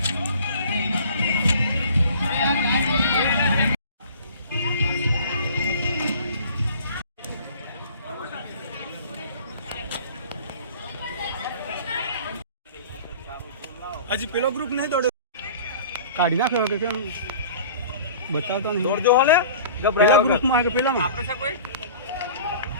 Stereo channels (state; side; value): inverted; both; correlation -0.45